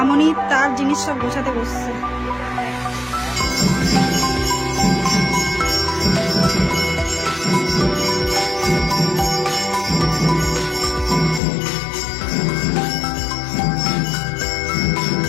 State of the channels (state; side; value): drops out; right; at 11.4 s